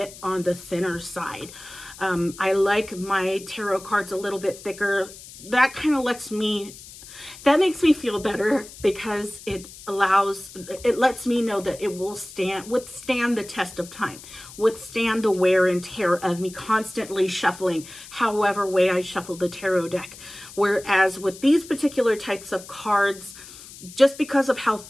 on the thinner side. I like my tarot cards a little bit thicker. That kind of makes me feel better, because it lets me know that it will withstand the test of time, withstand the wear and tear of me constantly shuffling however way I shuffle the tarot deck. Whereas with these particular types of cards, just because of how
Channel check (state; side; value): noise; left; hiss, 17 dB below the sound